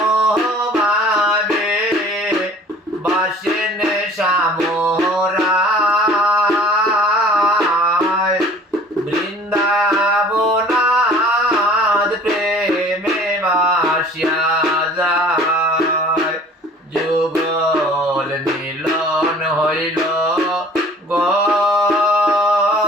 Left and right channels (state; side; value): normal; both; correlation 0.49